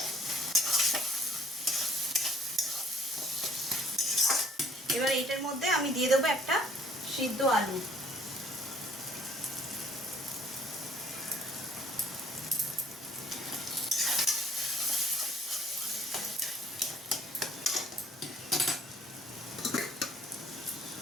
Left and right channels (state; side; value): normal; both; correlation 0.58